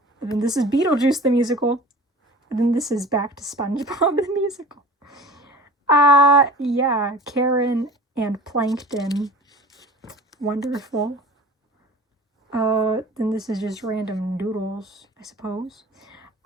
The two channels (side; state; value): both; normal; correlation 0.41